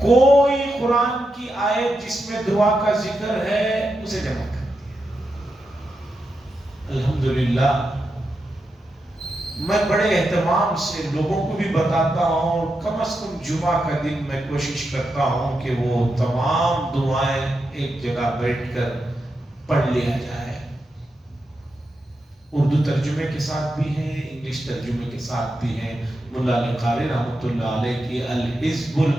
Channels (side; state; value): both; normal; correlation 0.87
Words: قرآن کی آیت جس میں دعا کا ذکر ہے اسے جمع کر دیا۔ الحمدللہ میں بڑے اہتمام سے لوگوں کو بھی بتاتا ہوں، کم از کم جمعہ کا دن میں کوشش کرتا ہوں کہ وہ تمام دعائیں ایک جگہ بیٹھ کر پڑھ لیا جائے۔ اردو ترجمے کے ساتھ بھی ہیں، انگلش ترجمے کے ساتھ بھی ہیں۔ ملا علی قاری رحمۃ اللہ علیہ کی الحزب